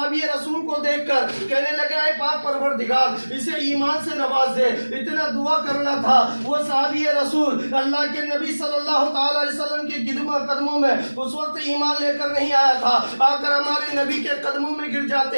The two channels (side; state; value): both; inverted; correlation -1.00